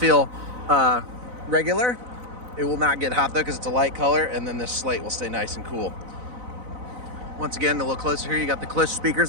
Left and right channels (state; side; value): late; left; 4.0 ms